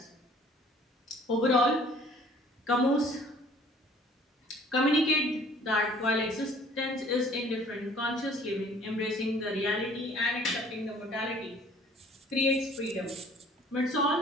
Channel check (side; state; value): both; normal; correlation 0.54